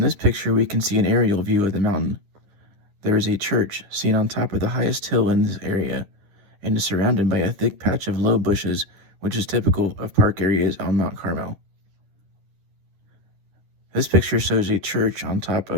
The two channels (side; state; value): left; late; 10 ms